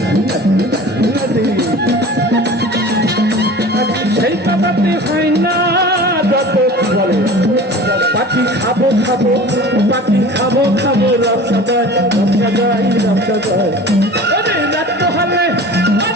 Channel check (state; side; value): normal; both; correlation 0.39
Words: সেই কথাতে হয় না যত বলে পাখি খাবো খাবো পাখি খাবো খাবো রবসা যায় রবসা যায় রবসা যায় রাত হলে